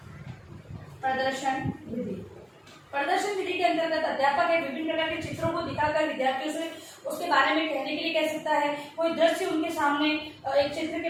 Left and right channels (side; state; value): both; identical; correlation 1.00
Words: प्रदर्शन विधि, प्रदर्शन विधि के अंतर्गत अध्यापक है विभिन्न प्रकार के चित्रों को दिखाकर विद्यार्थियों से उसके बारे में कहने के लिए कह सकता है। कोई दृश्य उनके सामने एक चित्र के